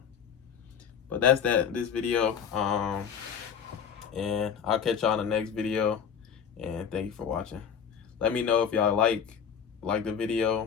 but that's this video. And I'll catch y'all in the next video, and thank you for watching. Let me know if y'all like the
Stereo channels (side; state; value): right; quieter; 7.5 dB